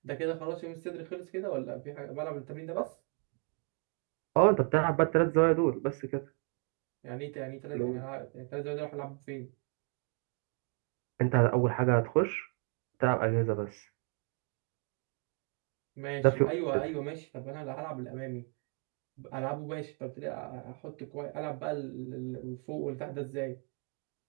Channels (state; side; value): quieter; left; 39.8 dB